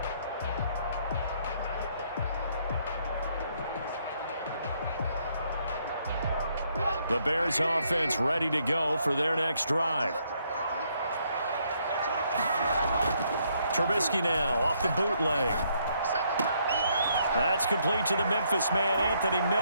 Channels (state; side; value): inverted; both; correlation -0.72